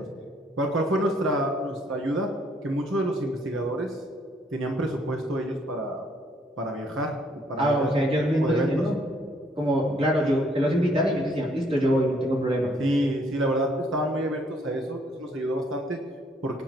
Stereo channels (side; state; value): both; normal; correlation 0.66